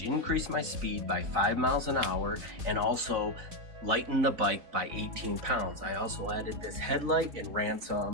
increased my speed by 5 miles an hour and also lightened the bike by 18 pounds. I also added this headlight and ran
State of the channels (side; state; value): left; late; 3.9 ms